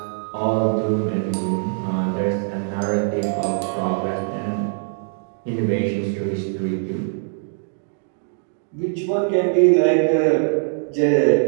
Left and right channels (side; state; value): left; silent; digital silence